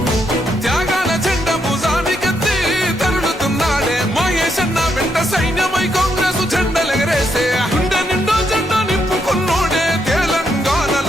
త్యాగాల జెండ భుజానికెత్తి తరులుతున్నాడే మహేశన్న వెంట సైన్యమై కాంగ్రెస్ జెండలెగరేసే గుండె నిండో జెండా నింపుకున్నోడే తెలంగాణల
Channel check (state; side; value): normal; both; correlation 0.78